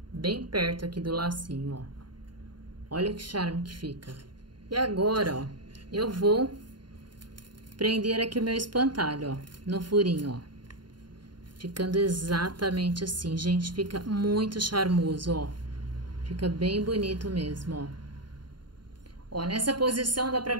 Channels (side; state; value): left; late; 0.71 ms